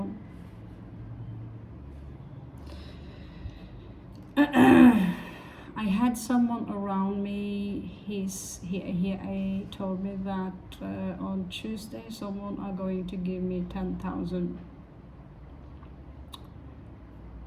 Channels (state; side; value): identical; both; correlation 1.00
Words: I had someone around me, he told me that on Tuesday someone are going to give me 10,000.